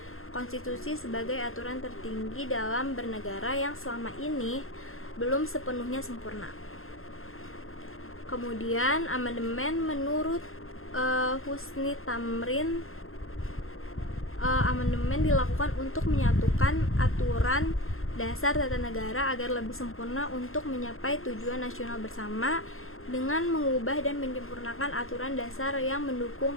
konstitusi sebagai aturan tertinggi dalam bernegara yang selama ini belum sepenuhnya sempurna. Kemudian amandemen menurut Husni Tamrin, amandemen dilakukan untuk menyatukan aturan dasar tata negara agar lebih sempurna untuk mencapai tujuan nasional bersama dengan mengubah dan menyempurnakan aturan dasar yang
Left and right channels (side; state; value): right; late; 0.61 ms